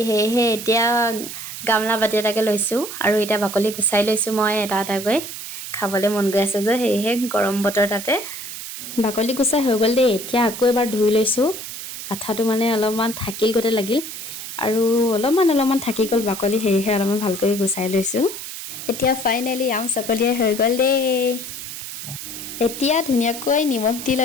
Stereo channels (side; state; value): right; noise; hiss, 9 dB below the sound